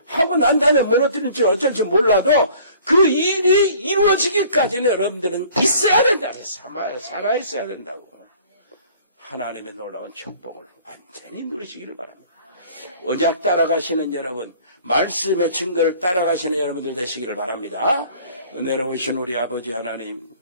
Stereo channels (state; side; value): inverted; both; correlation -0.52